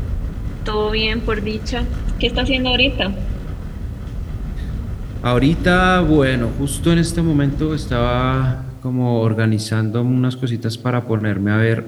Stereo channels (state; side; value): identical; both; correlation 1.00